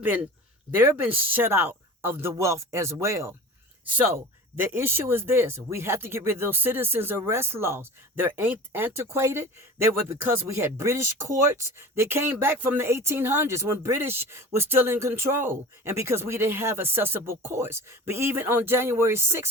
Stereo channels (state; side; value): normal; both; correlation 0.36